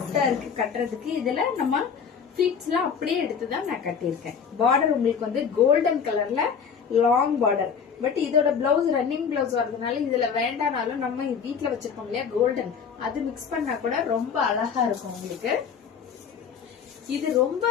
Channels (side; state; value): right; quieter; 6.7 dB